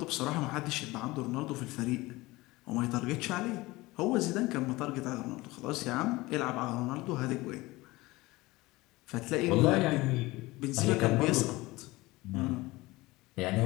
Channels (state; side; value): quieter; right; 20.6 dB